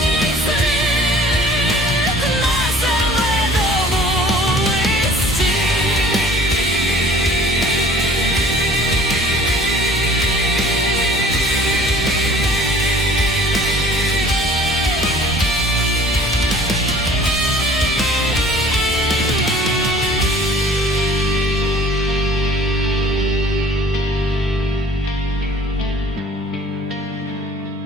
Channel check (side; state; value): both; normal; correlation 0.50